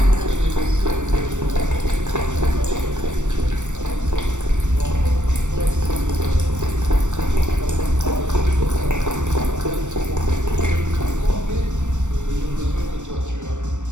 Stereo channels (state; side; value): late; left; 0.84 ms